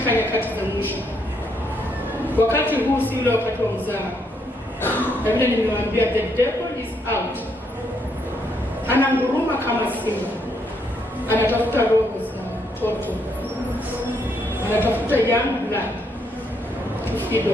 nyakati za mwisho. Wakati huu si ule wakati wa mzaha. Na vile nimewaambia, the devil is out. Ananguruma kama simba. Anatafuta roho za watoto. Anatafuta young blood.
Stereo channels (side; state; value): both; normal; correlation 0.75